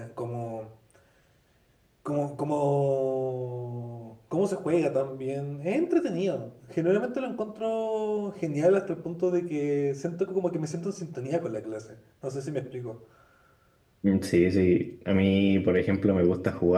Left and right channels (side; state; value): both; identical; correlation 1.00